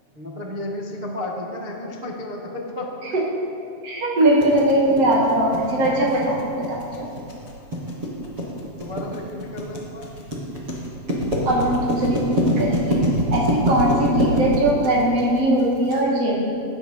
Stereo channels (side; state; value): left; late; 7.2 ms